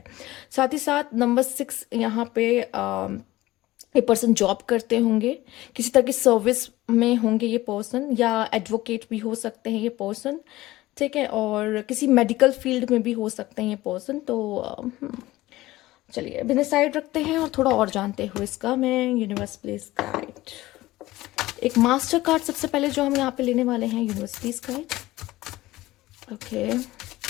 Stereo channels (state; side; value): quieter; right; 17.6 dB